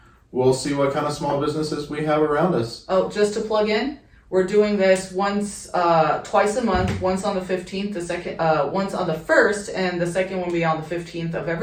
we'll see what kind of small businesses we have around us. Oh, just to plug in, we're doing this twice a month, once on the 15th, once on the 1st, and the second one will be on the 15th of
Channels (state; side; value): identical; both; correlation 1.00